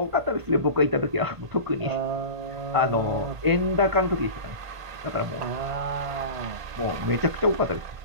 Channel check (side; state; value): left; late; 1.5 ms